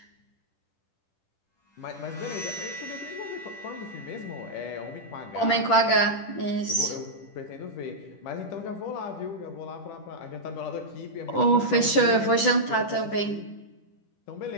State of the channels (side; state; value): right; late; 10 ms